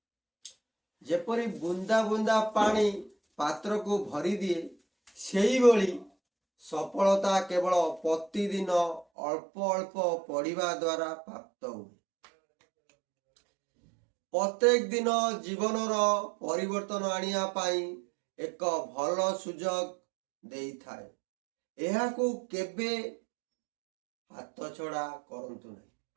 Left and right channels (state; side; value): drops out; left; at 9.1 s